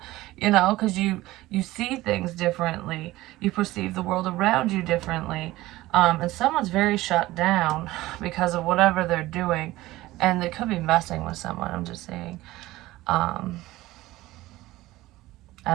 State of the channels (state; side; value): quieter; left; 17.6 dB